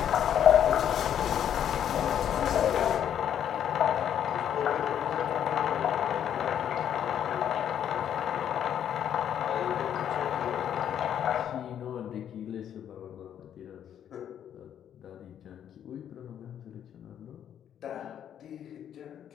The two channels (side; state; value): right; quieter; 9.6 dB